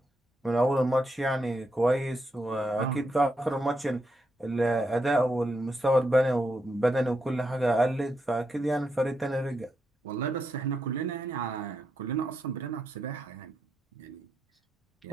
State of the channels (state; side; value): normal; both; correlation 0.83